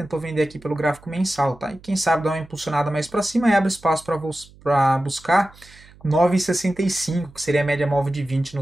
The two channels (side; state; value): right; noise; hum, 24 dB below the sound